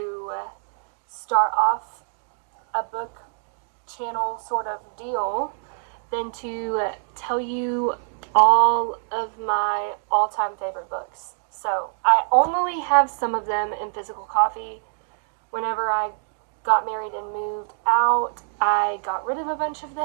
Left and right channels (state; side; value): silent; left; digital silence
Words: start off a book channel sort of deal than to tell you all of my all-time favorite books. So I only have some of them in physical copy. Whenever I got married and moved out, I got rid of a bunch of